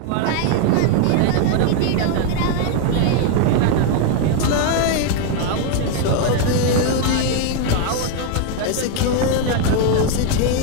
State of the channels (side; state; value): both; different; correlation 0.01